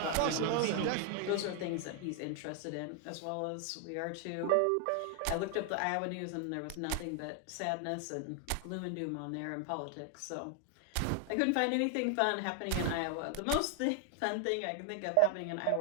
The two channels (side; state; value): both; different; correlation 0.00